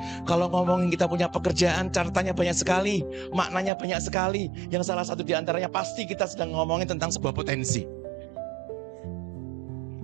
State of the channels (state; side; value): drops out; left; at 3.7 s